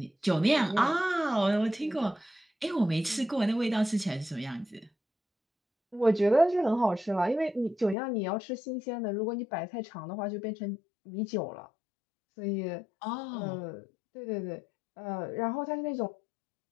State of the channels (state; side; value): drops out; right; at 8.0 s